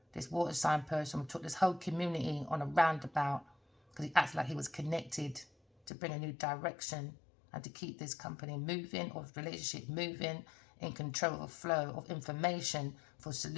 This water sign person took this whole community on a roundabout because he acted like he was connected to bring a new direction and to keep this company moving, or relationship moving, in control of the flow of information for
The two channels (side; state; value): right; drops out; at 5.9 s